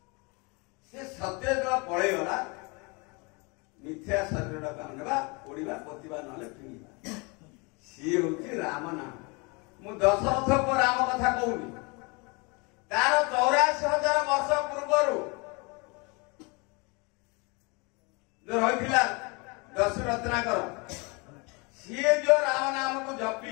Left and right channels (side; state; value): right; quieter; 29.4 dB